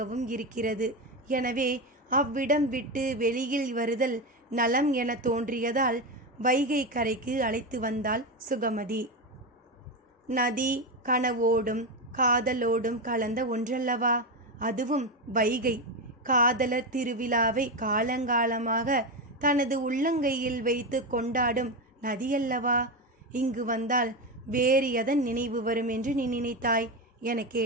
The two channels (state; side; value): normal; both; correlation 0.14